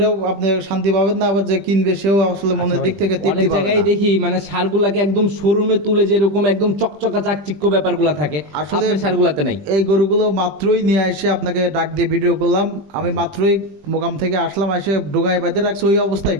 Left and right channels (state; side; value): late; left; 20 ms